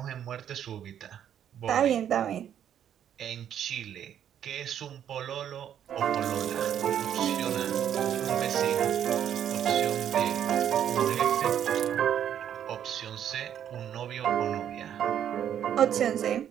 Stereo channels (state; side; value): quieter; left; 9.7 dB